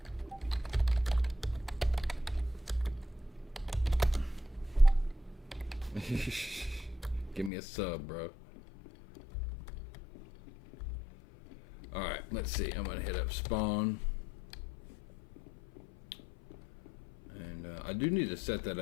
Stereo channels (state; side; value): drops out; right; at 7.5 s